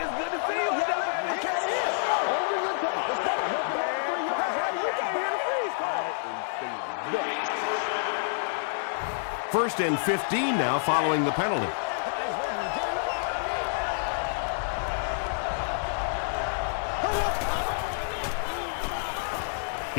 First and 15 now following the penalty.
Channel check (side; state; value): right; silent; 59 dB below the other